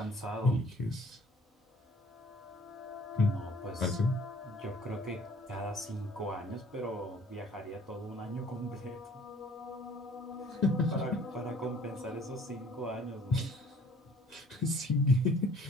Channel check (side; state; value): both; normal; correlation 0.55